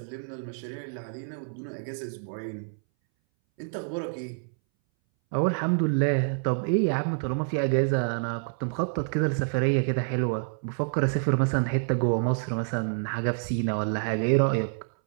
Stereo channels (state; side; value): silent; left; 60 dB below the other